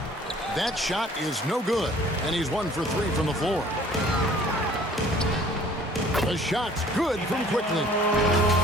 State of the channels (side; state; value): both; normal; correlation 0.53